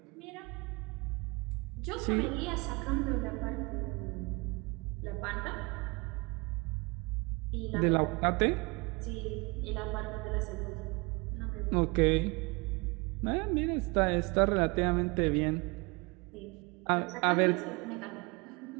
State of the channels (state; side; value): quieter; left; 27.7 dB